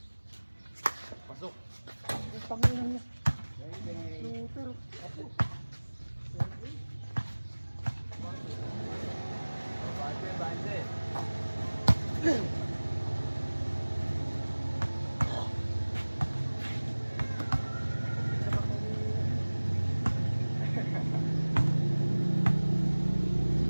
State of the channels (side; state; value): both; inverted; correlation -1.00